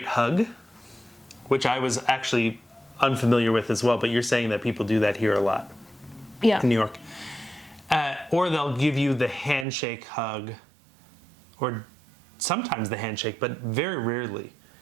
hug, which I was actually unfamiliar with as well, but you're saying that people do that here a lot. Yeah. In New York. Or they'll give you the handshake hug, or sometimes the handshake, but very rarely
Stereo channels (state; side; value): drops out; left; at 9.7 s